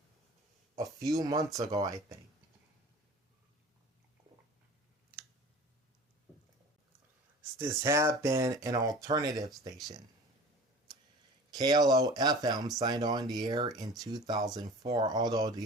a few months ago, I think. This had been an alternative station. KLO FM signed on the air in 2004, although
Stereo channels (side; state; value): both; normal; correlation 0.40